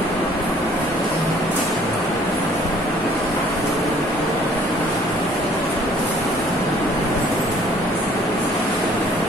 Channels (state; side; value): normal; both; correlation 0.57